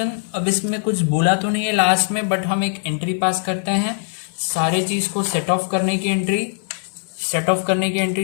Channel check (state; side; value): silent; right; 65 dB below the other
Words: अब इसमें कुछ बोला तो नहीं है लास्ट में, बट हम एक एंट्री पास करते हैं सारे चीज को सेट ऑफ करने की एंट्री। सेट ऑफ करने की